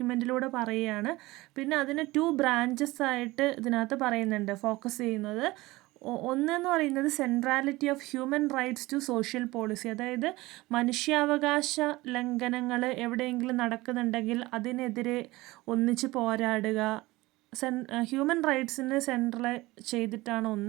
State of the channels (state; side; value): quieter; left; 20.0 dB